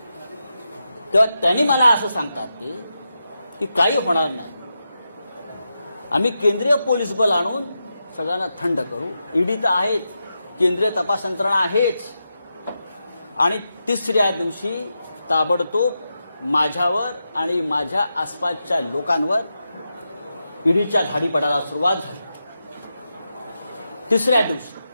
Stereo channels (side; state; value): both; inverted; correlation -0.88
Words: तेव्हा त्यांनी मला असं सांगतात ते की काही होणार नाही, आम्ही केंद्रीय पोलीस बल आणून सगळ्यांना थंड करू, ईडी तर आहेच, केंद्रीय तपास यंत्रणा आहेच. आणि तिसऱ्या दिवशी ताबडतोब माझ्यावर आणि माझ्या आसपासच्या लोकांवर ईडीच्या धाडी पडायला सुरुवात झाली. तिसऱ्या दिवशी